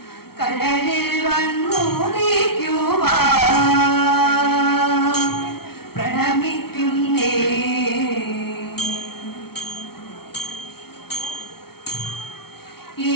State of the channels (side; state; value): right; late; 0.95 ms